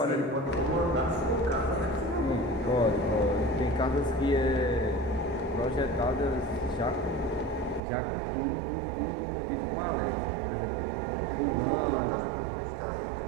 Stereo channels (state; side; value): drops out; left; at 7.8 s